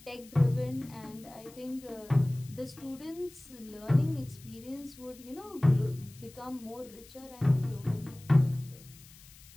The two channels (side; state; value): left; noise; hiss, 22 dB below the sound